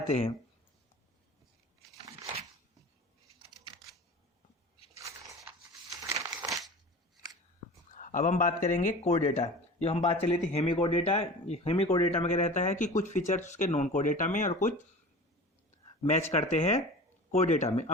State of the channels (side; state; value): both; normal; correlation 0.37